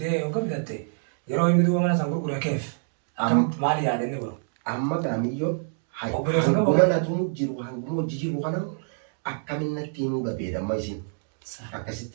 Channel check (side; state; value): left; silent; digital silence